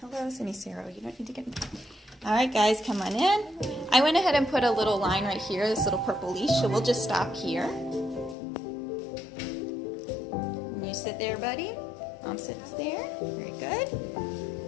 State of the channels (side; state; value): right; drops out; at 8.3 s